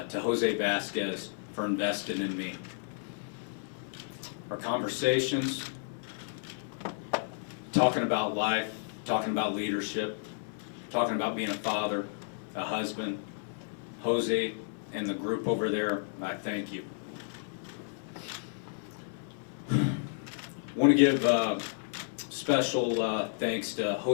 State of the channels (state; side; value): silent; right; 56 dB below the other